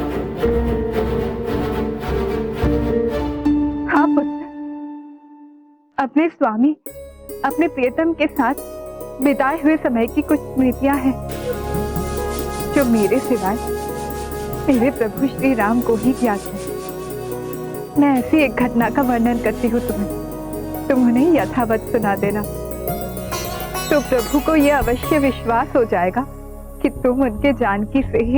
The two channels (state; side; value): identical; both; correlation 1.00